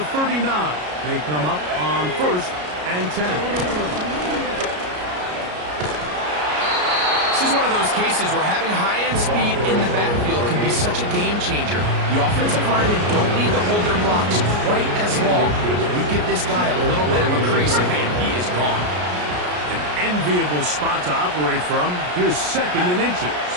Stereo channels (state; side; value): late; left; 33 ms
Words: 39, they come up on first and 10. This is one of those cases where having high-end speed in the backfield can be such a game changer. The offensive linemen don't need to hold their blocks quite as long. We give this guy a little bit of a crease, and man, he is gone. An enviable spot to operate from. Here's second and inches.